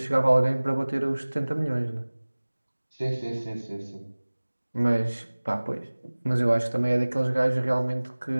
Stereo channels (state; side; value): inverted; both; correlation -1.00